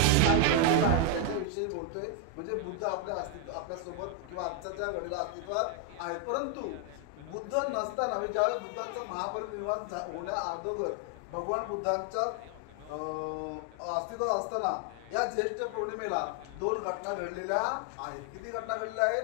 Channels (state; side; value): different; both; correlation 0.01